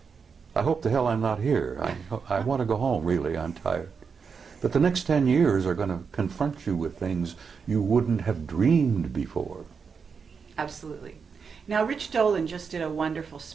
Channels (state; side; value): quieter; left; 5.8 dB